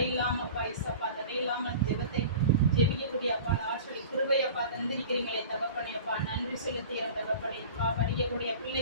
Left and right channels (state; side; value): inverted; both; correlation -0.39